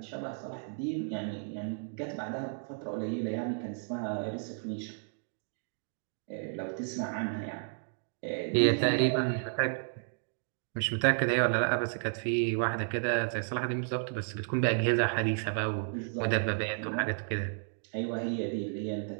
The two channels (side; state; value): left; silent; digital silence